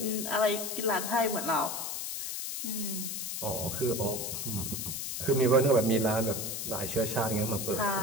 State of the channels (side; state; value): left; noise; hiss, 4 dB below the sound